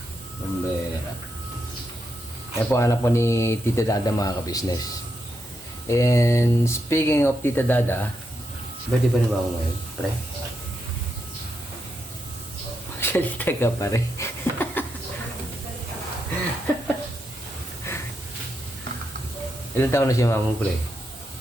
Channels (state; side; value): normal; both; correlation 0.83